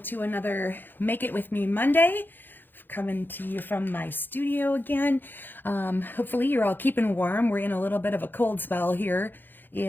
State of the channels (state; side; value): late; right; 0.094 ms